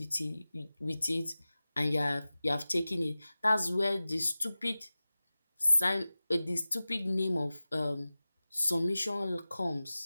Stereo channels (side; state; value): both; inverted; correlation -0.97